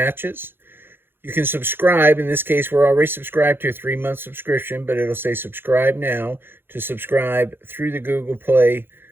You can subscribe. In this case, we're already subscribed to a 3-month subscription, but it'll say subscribe now to subscribe through the Google Play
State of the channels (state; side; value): late; left; 0.10 ms